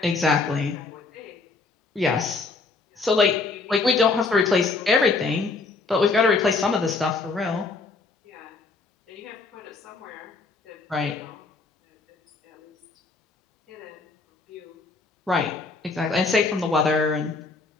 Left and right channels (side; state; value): right; quieter; 4.0 dB